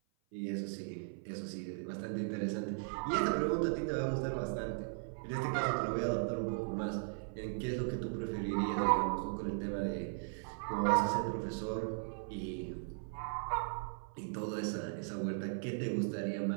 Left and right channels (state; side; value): silent; left; 53 dB below the other